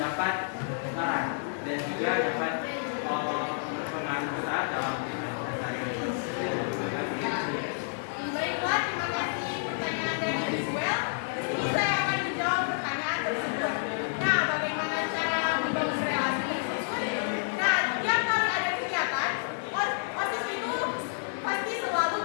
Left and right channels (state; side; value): silent; right; digital silence